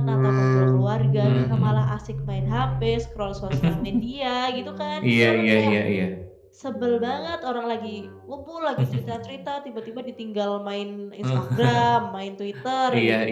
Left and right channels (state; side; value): identical; both; correlation 1.00